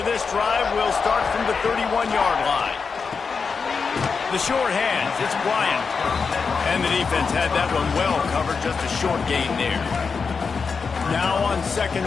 of this drive will start from the 31-yard line. The short hands, it's Bryant. And the defense had that one well covered, just a short gain there. Now on 2nd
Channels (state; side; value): quieter; right; 5.2 dB